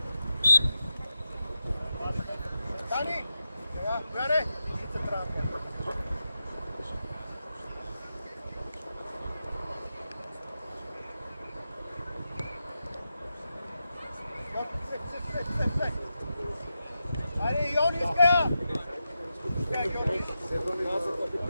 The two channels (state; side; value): inverted; both; correlation -0.89